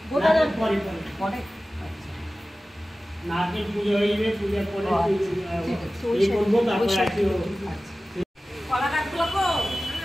পরে নারকেল পুজো হয়ে যাবে, পূজার পরে এই করবো, তারপর আছে কলা গাছগুলো কো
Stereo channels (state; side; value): normal; both; correlation 0.96